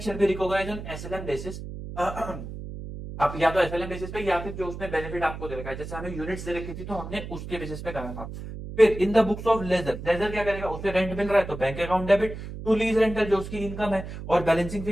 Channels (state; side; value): noise; right; hum, 9 dB below the sound